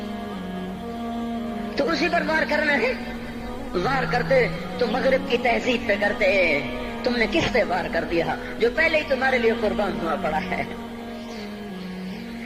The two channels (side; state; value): both; identical; correlation 1.00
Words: تو اسی پر وار کرنا ہے. وار کرتے تو مغرب کی تہذیب پہ کرتے. تم نے کس پہ وار کر دیا جو پہلے ہی تمہارے لیے قربان ہوا پڑا ہے؟